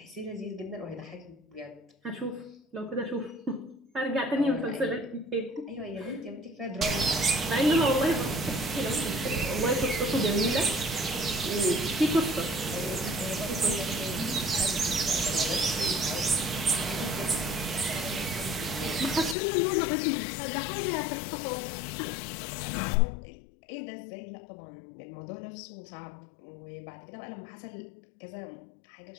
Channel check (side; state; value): right; drops out; at 19.4 s